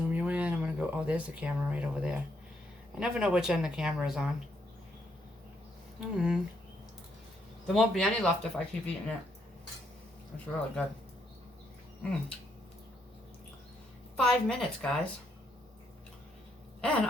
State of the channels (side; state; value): both; normal; correlation 0.75